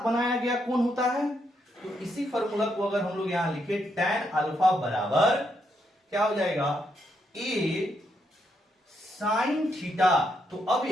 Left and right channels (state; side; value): normal; both; correlation 0.78